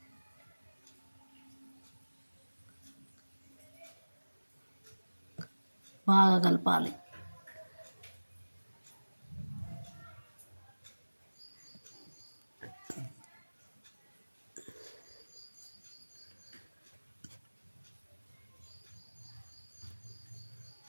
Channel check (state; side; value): inverted; both; correlation -1.00